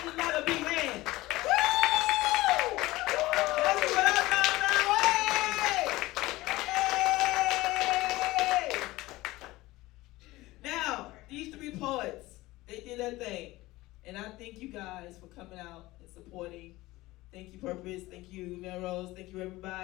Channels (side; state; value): right; quieter; 19.0 dB